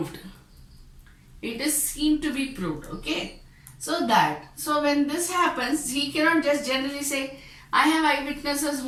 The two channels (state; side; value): identical; both; correlation 1.00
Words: It is seen to be proved, okay? So when this happens, he cannot just generally say, I have eyewitnesses